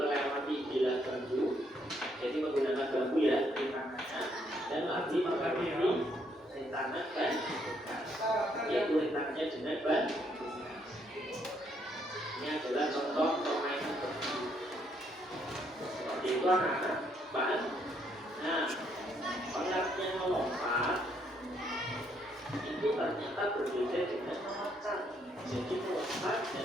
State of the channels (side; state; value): both; normal; correlation 0.71